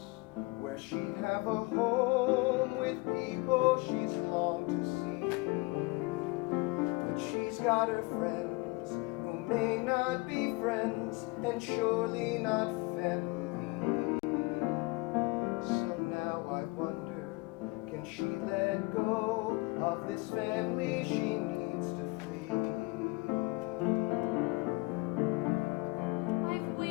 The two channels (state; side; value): quieter; right; 25.5 dB